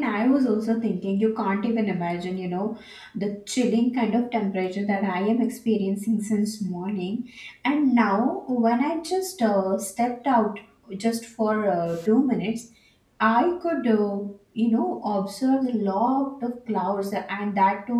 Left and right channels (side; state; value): both; identical; correlation 1.00